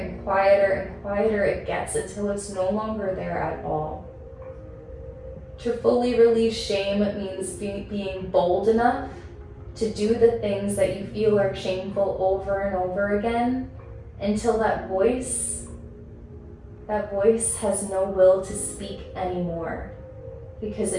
quieter and quieter it gets until it's no longer there at all. To fully release shame means being bold enough to do the things that you feel are shameful over and over again until that voice has no will to speak anymore. because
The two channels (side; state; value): both; identical; correlation 1.00